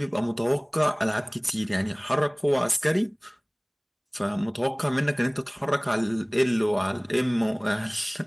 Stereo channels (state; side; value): identical; both; correlation 1.00